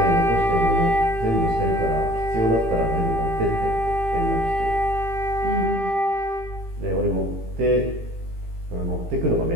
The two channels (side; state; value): left; late; 18 ms